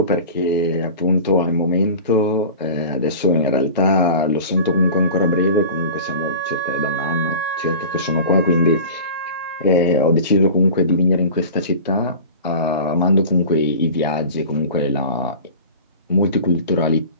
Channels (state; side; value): inverted; both; correlation -0.36